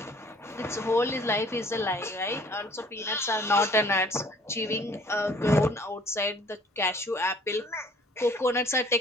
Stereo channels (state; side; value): normal; both; correlation 0.55